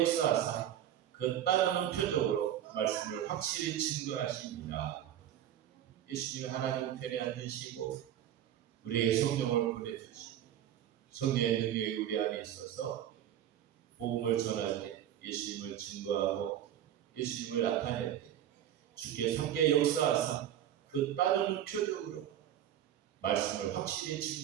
역사하사 그 따르는 표적으로 말씀을 확실히 증거하십니다. 예수님이 하나님 우편에 앉으시고 우리에게 성령을 보내주시고 성령의 능력이 우리 안에 있어서 복음을 전할 때 예수님을 증거하고 예수님을 나타낼 때 주께 함께 역사하사 그 따르는 표적으로 말씀을 확실히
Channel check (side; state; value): left; quieter; 11.1 dB